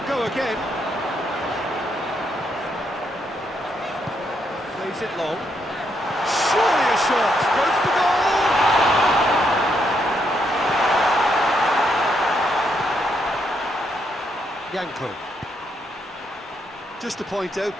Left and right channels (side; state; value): both; normal; correlation 0.77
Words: go again. Plays it long. Surely a shot. Goes for goal! Janko. Just to point out,